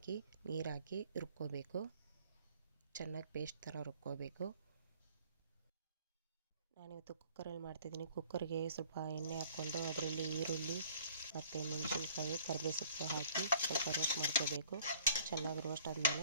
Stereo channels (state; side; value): inverted; both; correlation -0.55